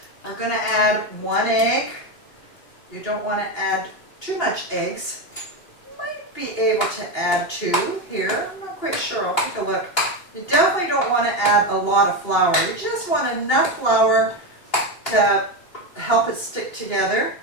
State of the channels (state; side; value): late; right; 2.8 ms